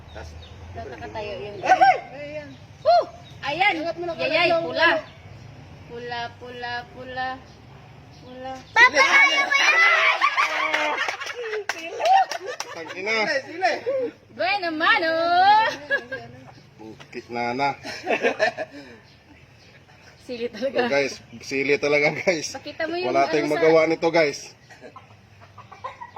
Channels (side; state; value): both; identical; correlation 1.00